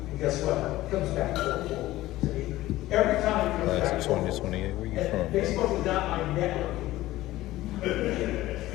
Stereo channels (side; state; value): right; quieter; 16.4 dB